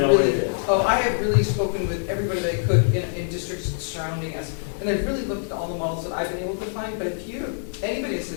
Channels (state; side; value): silent; right; digital silence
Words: what it is. Oh, I have really spoken with everybody that I could in districts surrounding us, and I've really looked at all the models that I've been able to find. But if anybody has